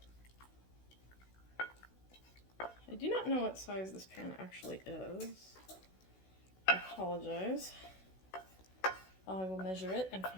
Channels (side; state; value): right; late; 16 ms